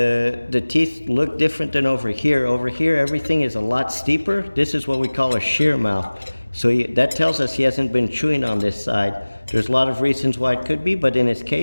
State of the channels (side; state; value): both; inverted; correlation -1.00